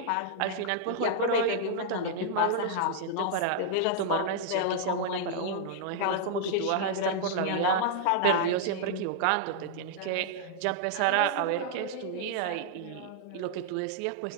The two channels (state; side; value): different; both; correlation -0.01